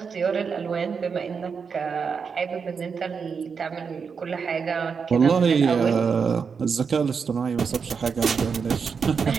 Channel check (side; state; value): left; quieter; 5.9 dB